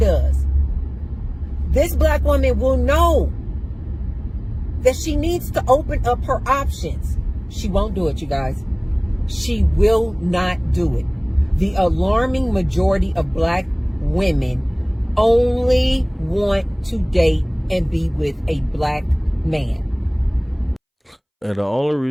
This black woman will know that she needs to open up her options. She won't do it, you guys. She will not do it. The alarming majority of black women only want to date and be with a black man. And the only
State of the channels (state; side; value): identical; both; correlation 1.00